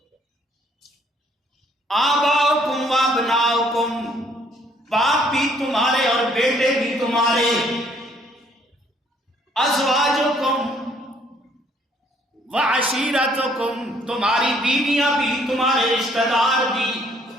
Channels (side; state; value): both; normal; correlation 0.64